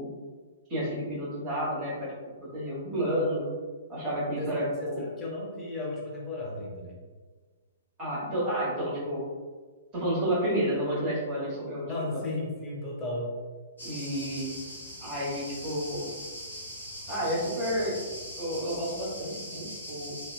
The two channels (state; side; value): inverted; both; correlation -0.36